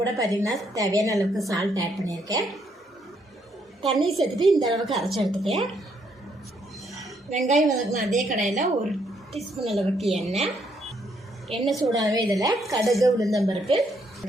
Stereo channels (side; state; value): both; normal; correlation 0.72